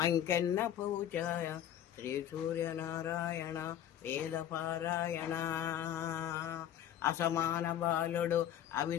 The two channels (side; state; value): right; quieter; 10.7 dB